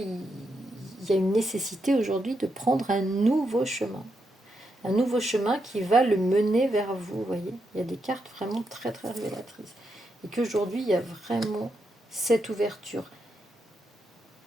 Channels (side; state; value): both; normal; correlation 0.83